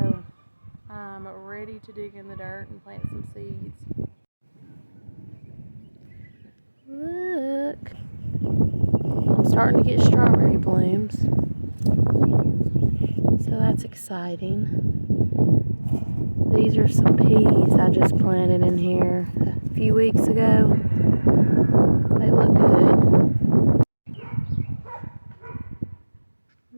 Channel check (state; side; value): inverted; both; correlation -1.00